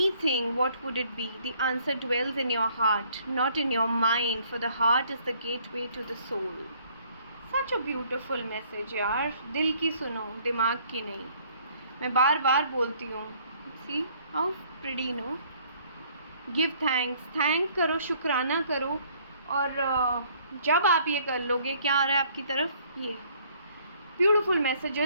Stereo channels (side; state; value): both; inverted; correlation -0.61